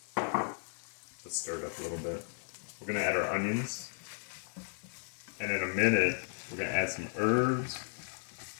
go. Let's stir it up a little bit. We're going to add our onions. And in a minute, we're going to add some herbs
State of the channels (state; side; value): silent; right; 54 dB below the other